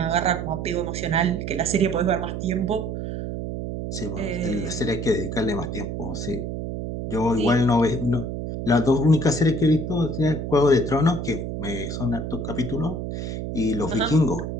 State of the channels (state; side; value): noise; right; hum, 5 dB below the sound